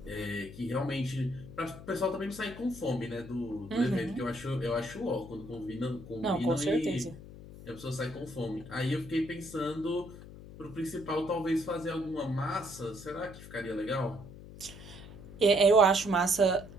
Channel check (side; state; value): left; noise; hum, 15 dB below the sound